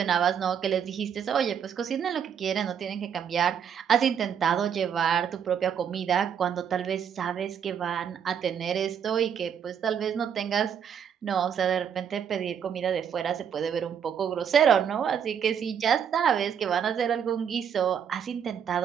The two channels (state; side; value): quieter; left; 8.0 dB